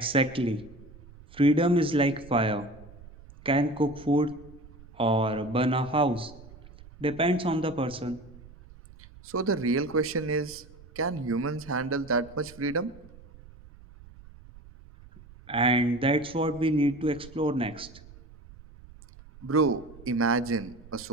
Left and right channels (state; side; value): noise; right; rumble, 21 dB below the sound